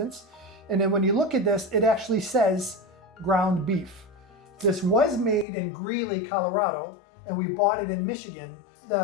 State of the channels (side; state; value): right; drops out; at 5.5 s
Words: And then when you look at this, it actually says ground beef. This was made in Greeley, Colorado, and we bought it in Michigan.